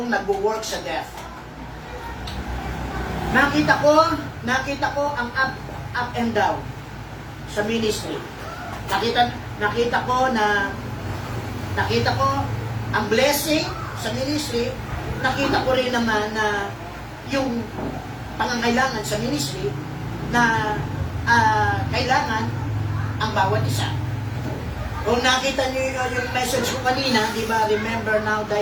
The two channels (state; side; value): identical; both; correlation 1.00